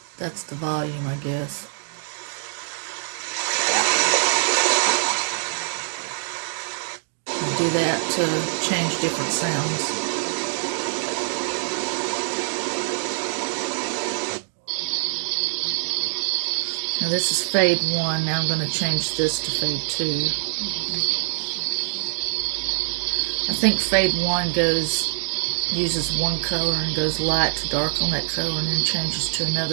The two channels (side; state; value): left; silent; digital silence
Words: That's the volume, I guess. I do that to change different sounds. Now this is fade 1. Now I'm going to change this to fade 2. I think fade 1 uses one color and goes light to dark on that color and then changes to